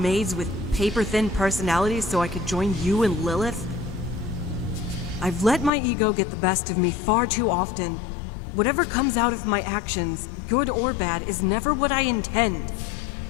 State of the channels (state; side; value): drops out; right; at 5.7 s